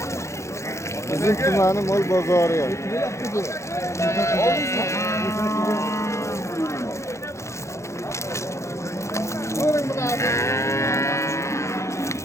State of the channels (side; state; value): right; late; 0.14 ms